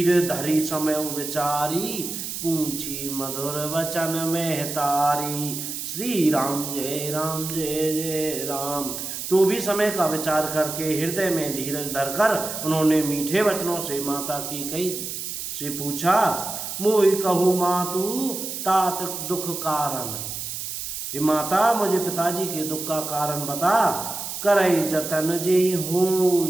धरी समय विचारी, पूछी मधुर वचन में तारी। श्री राम जय राम। तो भी समय का विचार करके हृदय में धीरज धरकर उन्होंने मीठे वचनों से माता कैकेयी से पूछा, मोहि कहू मातु तात दुख कारण। हे माता, मुझे पिताजी के दुख का कारण बता। करई जतन जे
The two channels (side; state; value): right; noise; hiss, 6 dB below the sound